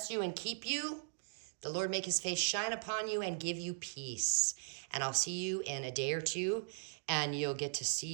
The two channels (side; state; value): left; silent; digital silence